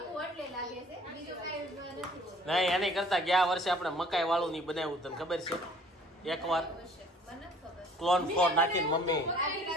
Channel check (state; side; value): normal; both; correlation 0.54